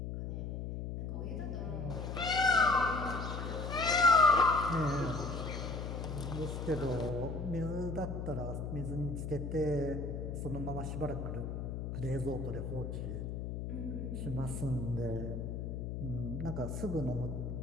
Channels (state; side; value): noise; left; hum, 4 dB below the sound